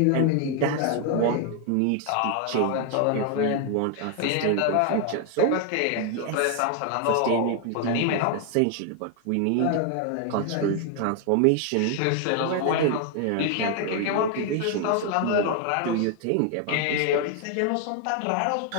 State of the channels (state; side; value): different; both; correlation 0.00